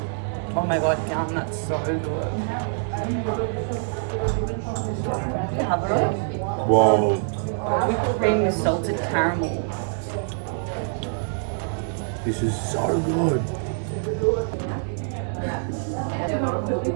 Oh my god, yum, that's so good. Whoa. Whipped cream with salted caramel. This is so good.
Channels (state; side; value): silent; left; digital silence